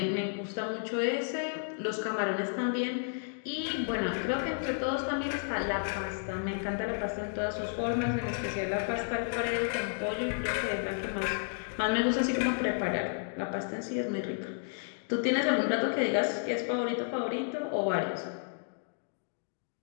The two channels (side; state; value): right; silent; digital silence